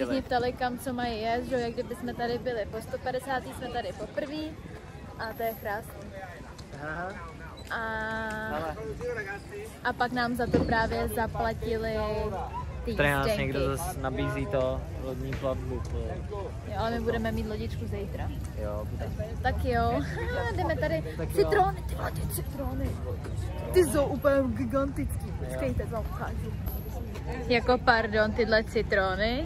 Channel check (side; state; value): both; identical; correlation 1.00